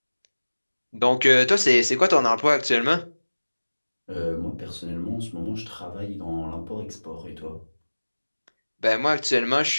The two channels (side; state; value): both; inverted; correlation -1.00